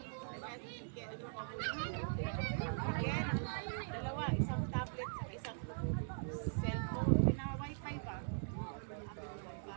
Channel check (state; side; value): silent; left; 50 dB below the other